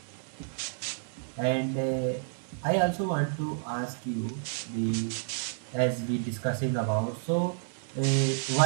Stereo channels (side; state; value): left; silent; digital silence